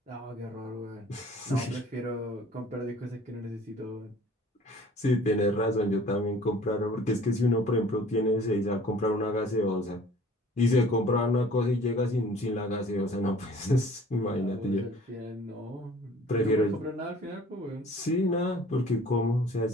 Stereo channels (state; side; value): normal; both; correlation 0.50